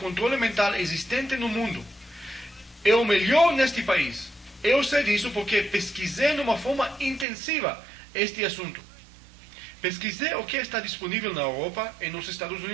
mental existente no mundo. É o melhor neste país. Eu sei disso porque pesquisei de uma forma intensiva este assunto. Pesquisei o que está disponível na Europa e nos Estados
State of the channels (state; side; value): drops out; left; at 7.2 s